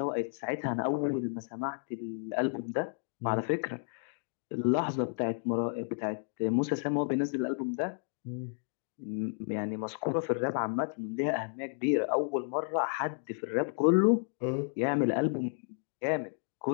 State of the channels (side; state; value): right; silent; digital silence